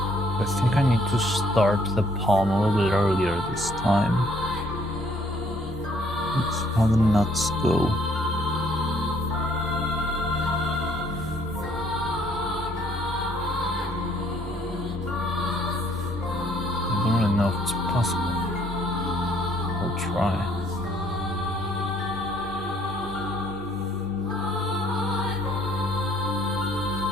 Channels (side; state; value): both; normal; correlation 0.64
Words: to start the palm a little bit earlier this time. Let's see how the nuts go. I don't really know if it's possible. I'll try.